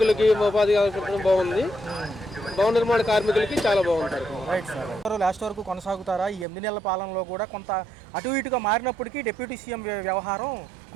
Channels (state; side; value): drops out; left; at 6.5 s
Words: ఉపాధి కల్పించడం బాగుంది భవన నిర్మాణ కార్మికులకి చాలా బాగుంటారు రైట్ సార్ లాస్ట్ వరకు కొనసాగుతారా ఈ 8 నెలల పాలనలో కూడా కొంత అటు ఇటుగా మారినప్పటికీ డిప్యూటీ సీఎం వ్యవహారం